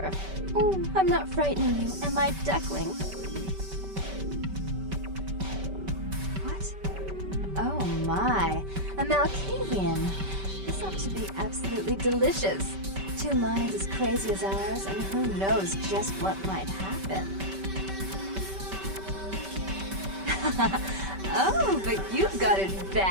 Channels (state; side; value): late; left; 5.2 ms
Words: Oh, I'm not frightening you, am I, duckling? What? Oh my, a Malkavian. This ought to be absolutely delicious. Two minds as crazy as ours, and who knows just what might happen. Oh, but you've got it